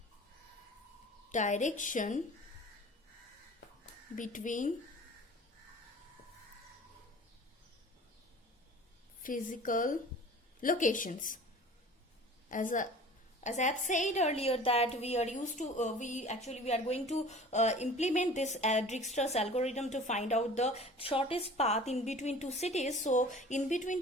direction between physical locations. As as I have said earlier that we are used to we are going to implement this Dijkstra's algorithm to find out the shortest path in between two cities. So in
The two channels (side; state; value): both; normal; correlation 0.43